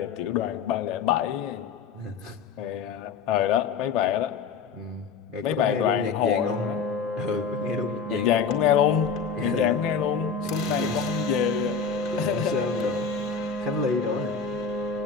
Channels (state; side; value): quieter; right; 5.9 dB